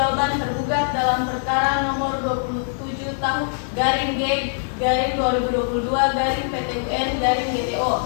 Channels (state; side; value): silent; right; digital silence